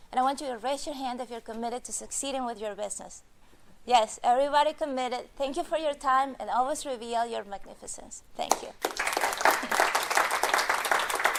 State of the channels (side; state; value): both; identical; correlation 1.00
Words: And I want you to raise your hand if you're committed to succeeding with your business. Yes, everybody committed. Thank you for your time, and always reveal your magnificence. Thank you.